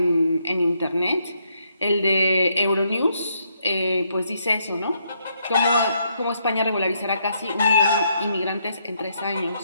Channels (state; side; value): inverted; both; correlation -0.76